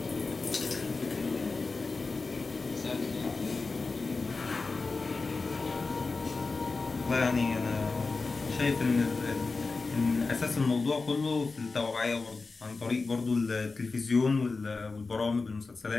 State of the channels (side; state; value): right; quieter; 4.0 dB